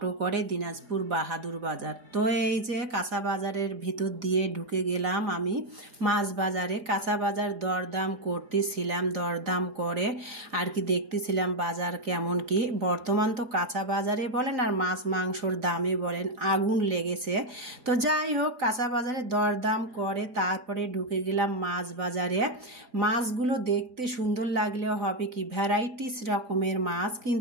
করে দিনাজপুর বাহাদুর বাজার। তো এই যে কাঁচা বাজারের ভিতর দিয়ে ঢুকে গেলাম আমি মাছ বাজারে। কাঁচা বাজার দরদাম করতেছিলাম, দরদাম করে আর কি দেখতেছিলাম বাজার কেমন কি। বর্তমান তো কাঁচা বাজারে বলেন আর মাছ মাংসর দামে বলেন আগুন লেগেছে। তো যাই হোক কাঁচা বাজারে দরদাম করে তারপরে ঢুকে গেলাম মাছ বাজারে। মাছগুলো দেখতে সুন্দর লাগলেও হবে কি ভ্যারাইটি রকমের মাছ,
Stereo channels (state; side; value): late; left; 4.9 ms